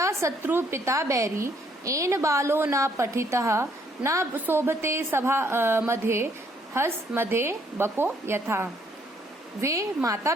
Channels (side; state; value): both; normal; correlation 0.67